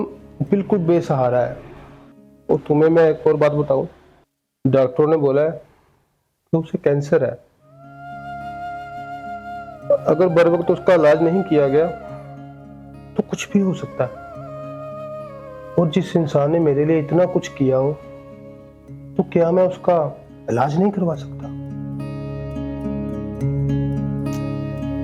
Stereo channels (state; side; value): identical; both; correlation 1.00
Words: बिल्कुल बेसहारा है। और तुम्हें मैं एक और बात बताऊं, डॉक्टरों ने बोला है कि उसे कैंसर है। अगर बर वक्त उसका इलाज नहीं किया गया तो कुछ भी हो सकता है। और जिस इंसान ने मेरे लिए इतना कुछ किया हो, तो क्या मैं उसका इलाज नहीं करवा सकता?